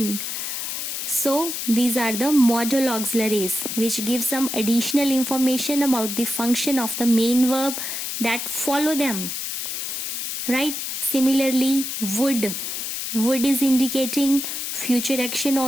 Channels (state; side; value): noise; left; hiss, 4 dB below the sound